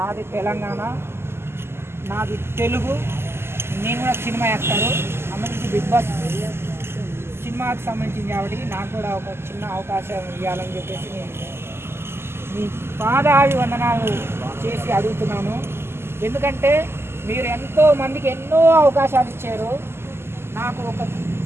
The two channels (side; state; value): left; late; 0.12 ms